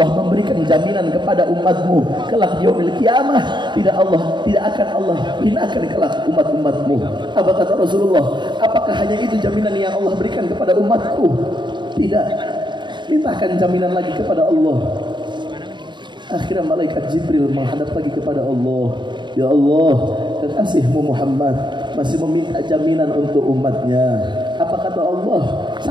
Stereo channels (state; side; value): late; left; 0.22 ms